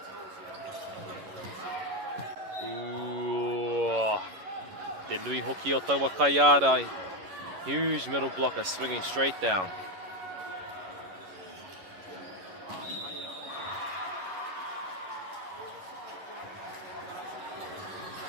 Te nui hoki o taua kai ārai. Huge middle blocker swinging straight down.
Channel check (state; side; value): late; left; 11 ms